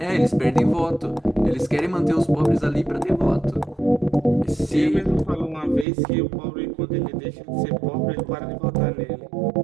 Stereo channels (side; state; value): left; drops out; at 5.9 s